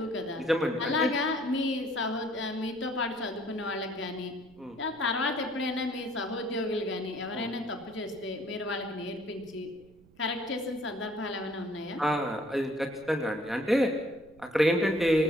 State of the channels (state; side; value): noise; right; rumble, 26 dB below the sound